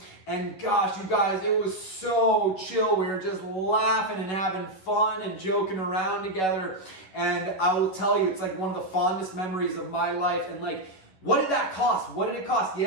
And gosh, you guys, it was so chill. We were just laughing and having fun and joking around together. And I will tell you, it's like one of the fondest memories of my life. And like, what did that cost? What did it cost?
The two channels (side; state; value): right; late; 11 ms